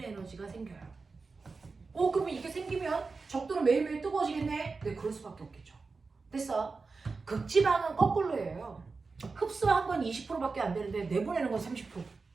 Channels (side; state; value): left; quieter; 4.3 dB